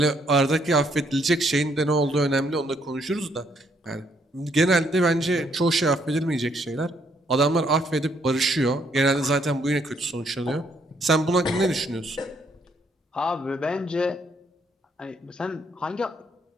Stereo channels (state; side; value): normal; both; correlation 0.71